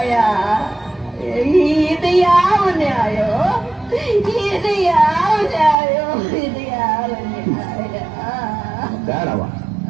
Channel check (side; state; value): left; drops out; at 5.8 s